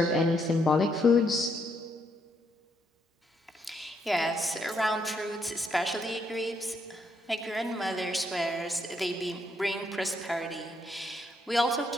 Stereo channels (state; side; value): normal; both; correlation 0.75